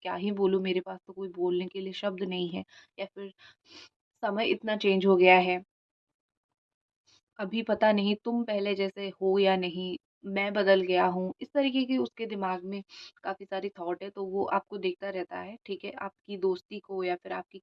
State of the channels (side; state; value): both; identical; correlation 1.00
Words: ही बोलूँ, मेरे पास तो कोई बोलने के लिए शब्द नहीं है, या फिर समय इतना चेंज हो गया है। अभी पता नहीं तुम पहले जैसे हो या नहीं, मैं बदल गया हूँ। इस तरीके की उसके दिमाग में काफ़ी सारी थॉट है, तो वो आपको देखता रहता है, ठीक है? आपकी दोस्ती को या फिर आपकी